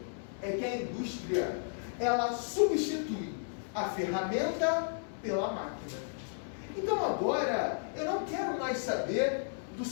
é que a indústria, ela substitui a ferramenta pela máquina. Então agora, eu não quero mais saber do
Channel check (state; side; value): silent; right; digital silence